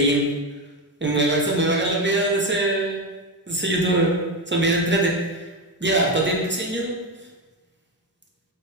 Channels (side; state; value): both; normal; correlation 0.14